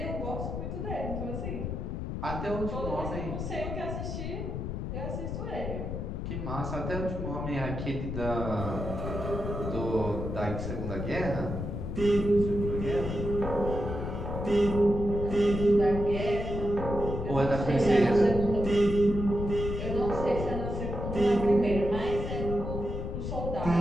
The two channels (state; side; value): noise; left; rumble, 4 dB below the sound